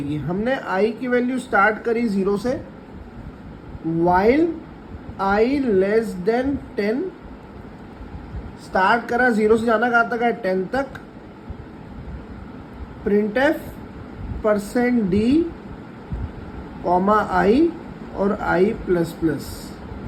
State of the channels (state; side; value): identical; both; correlation 1.00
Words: हमने आई की वैल्यू स्टार्ट करी 0 से, while I less then 10 start करा। 0 से जाना कहाँ तक है? 10 तक। प्रिंट एफ %d कॉमा आई और आई प्लस प्लस।